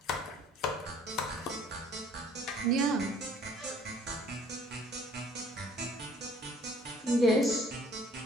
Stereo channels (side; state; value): both; normal; correlation 0.57